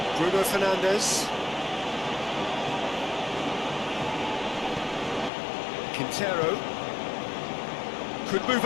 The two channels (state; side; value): drops out; right; at 5.3 s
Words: Bruno Fernandes. Quintero. Could move